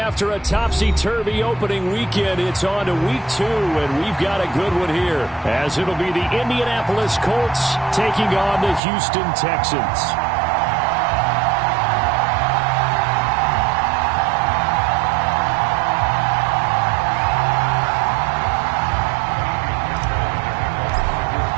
a topsy-turvy opening weekend, it's on to week 2, and we've got a good one here, as it'll be the Indianapolis Colts taking on the Houston Texans.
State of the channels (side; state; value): left; drops out; at 8.8 s